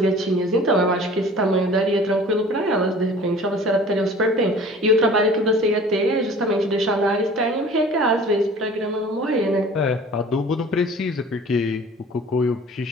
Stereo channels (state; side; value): normal; both; correlation 0.46